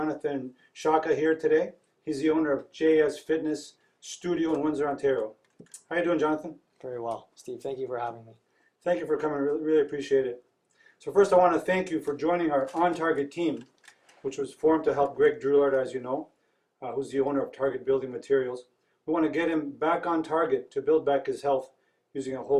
Sciacca here today. He's the owner of JS Fitness Studio in Windsor, Ontario. How are you doing, Jonathan? Very well, Steve. Thank you for having me. Thank you for coming. Really appreciate it. So first, I want to thank you for joining our On Target team, which was formed to help Greg Drouillard, as you know, who's the owner of Target Building Materials. We want to get him back on target to build back his health using a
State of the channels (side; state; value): both; identical; correlation 1.00